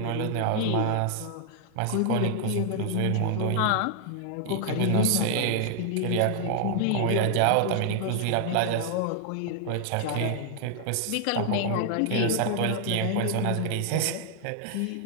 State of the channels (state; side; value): different; both; correlation 0.00